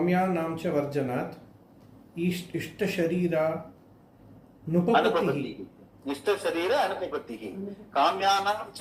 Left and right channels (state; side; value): identical; both; correlation 1.00